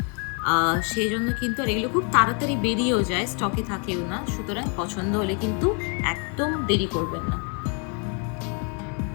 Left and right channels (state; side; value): quieter; right; 37.4 dB